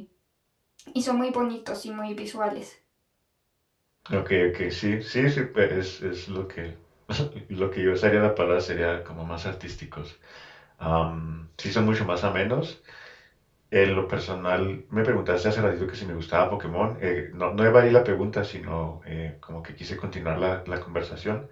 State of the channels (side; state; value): both; identical; correlation 1.00